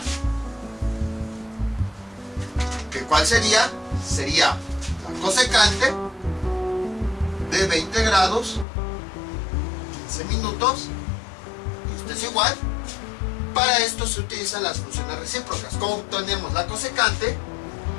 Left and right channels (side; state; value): right; drops out; at 8.7 s